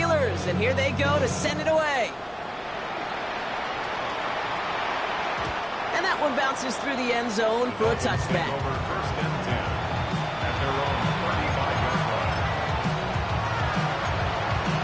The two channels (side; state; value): both; identical; correlation 1.00